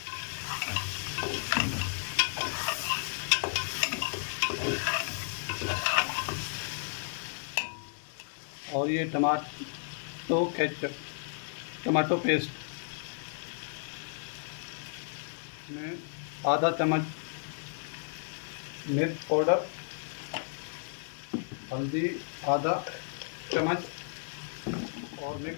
और ये टमाटो पेस्ट में आधा चम्मच मिर्च पाउडर, हल्दी आधा चम्मच और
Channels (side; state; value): right; silent; digital silence